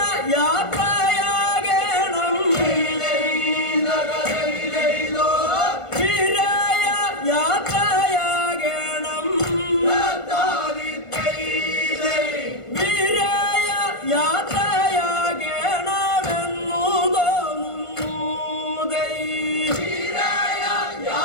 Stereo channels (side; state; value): right; late; 1.5 ms